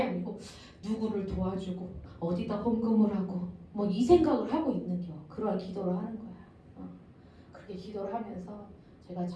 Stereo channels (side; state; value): both; identical; correlation 1.00